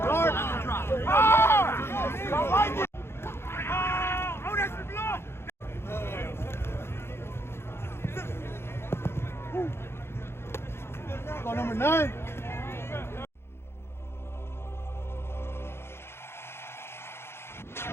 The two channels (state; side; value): late; right; 0.12 ms